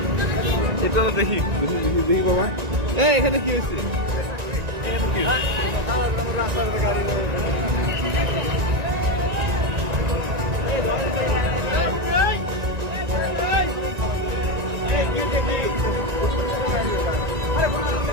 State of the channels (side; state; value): left; late; 1.9 ms